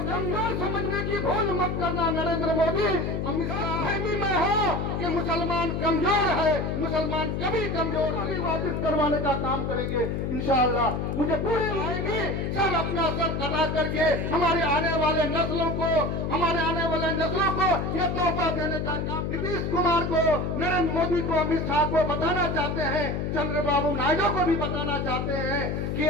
कमजोर समझने की भूल मत करना नरेंद्र मोदी। अमित शाह फहमी में हो कि मुसलमान कमजोर है, मुसलमान कभी कमजोर नहीं। वापस करवाने का काम करेंगे इंशाअल्लाह। मुझे पूरी आएगी सब अपना सर कटा करके हमारे आने वाले नस्लों को ये तोहफा देने का काम नीतीश कुमार को, नरेंद्र मोदी को, अमित शाह को बताना चाहते हैं, चंद्रबाबू नायडू को भी बताना चाहते हैं कि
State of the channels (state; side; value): noise; left; hum, 1 dB below the sound